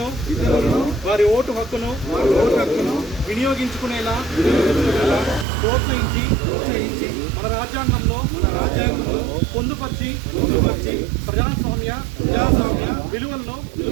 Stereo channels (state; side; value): drops out; left; at 5.5 s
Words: వారి ఓటు హక్కును వినియోగించుకునేలా ప్రోత్సహించి మన రాజ్యాంగంలో పొందుపరిచి ప్రజాస్వామ్య విలువలను